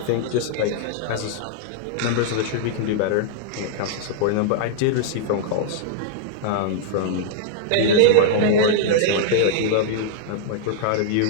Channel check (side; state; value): both; different; correlation -0.01